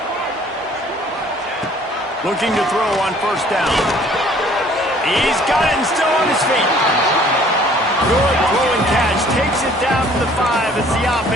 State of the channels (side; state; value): both; normal; correlation 0.56